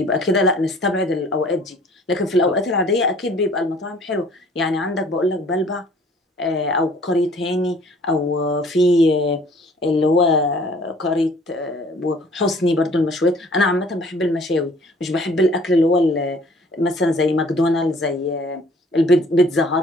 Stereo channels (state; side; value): normal; both; correlation 0.54